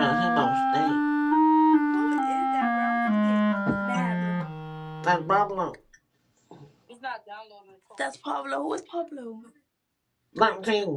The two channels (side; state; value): both; identical; correlation 1.00